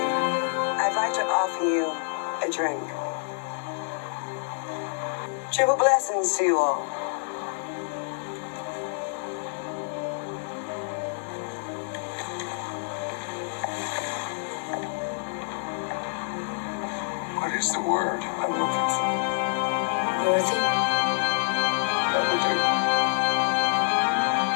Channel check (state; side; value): silent; right; 60 dB below the other